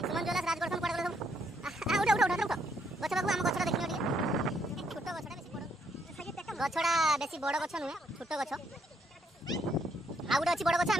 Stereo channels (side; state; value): both; normal; correlation 0.73